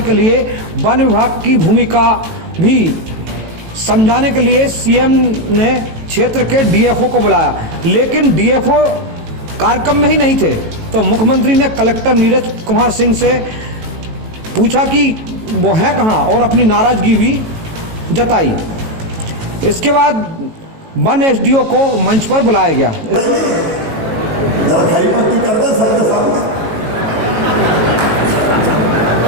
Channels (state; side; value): late; left; 18 ms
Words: लिए वन विभाग की भूमिका भी समझाने के लिए सीएम ने क्षेत्र के डीएफओ को बुलाया, लेकिन डीएफओ कार्यक्रम में ही नहीं थे। तो मुख्यमंत्री ने कलेक्टर नीरज कुमार सिंह से पूछा कि वो है कहाँ और अपनी नाराजगी भी जताई। इसके बाद वन एसडीओ को मंच पर बुलाया गया।